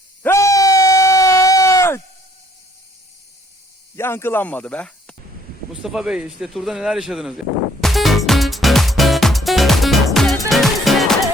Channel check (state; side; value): normal; both; correlation 0.63